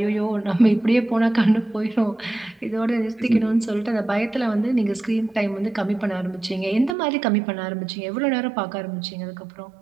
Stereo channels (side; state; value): left; drops out; at 7.0 s